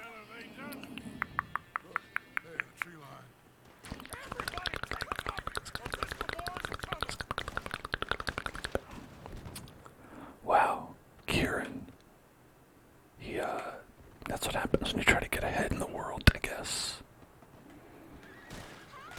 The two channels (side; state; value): both; identical; correlation 1.00